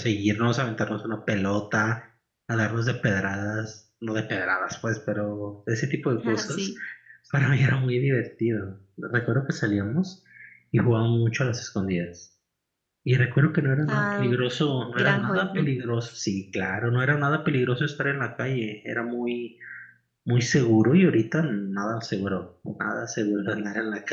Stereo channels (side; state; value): both; identical; correlation 1.00